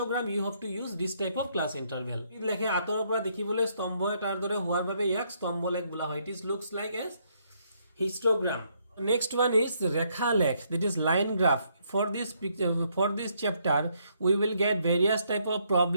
you have to use this type of class interval. লেখে আতৰৰ পৰা দেখিবলৈ স্তম্ভ এটাৰ দৰে হোৱাৰ বাবে ইয়াক স্তম্ভ লেখ বোলা হয়. It is looks like as histogram. Next one is rekha lekh, that is line graph. For this chapter we will get various type of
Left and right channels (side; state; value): both; inverted; correlation -0.72